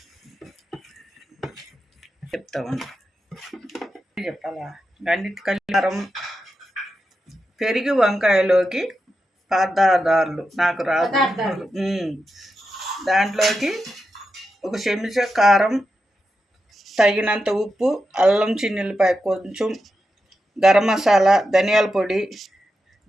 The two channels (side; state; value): both; normal; correlation 0.88